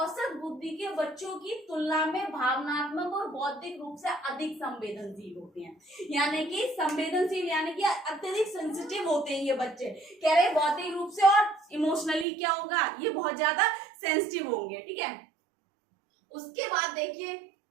बुद्धि के बच्चों की तुलना में भावनात्मक और बौद्धिक रूप से अधिक संवेदनशील होते हैं। यानी कि संवेदनशील यानी कि अत्यधिक सेंसिटिव होते हैं ये बच्चे, कह रहे बौद्धिक रूप से और इमोशनली क्या होगा, ये बहुत ज्यादा सेंसिटिव होंगे, ठीक है। उसके बाद देखिए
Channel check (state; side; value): drops out; left; at 12.2 s